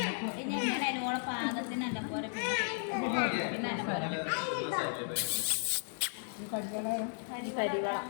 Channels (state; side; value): silent; right; digital silence